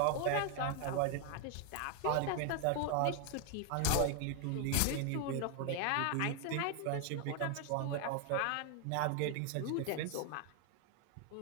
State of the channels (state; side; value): different; both; correlation 0.00